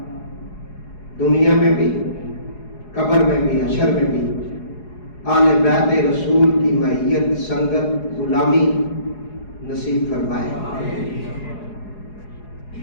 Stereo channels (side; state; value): right; late; 4.8 ms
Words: دنیا میں بھی، قبر میں بھی، حشر میں بھی آل بیت رسول کی معیت، سنگت، غلامی نصیب فرمائے۔